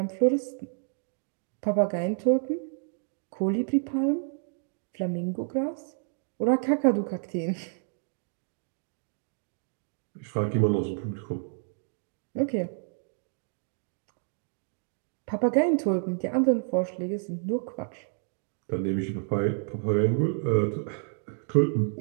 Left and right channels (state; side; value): silent; left; 57 dB below the other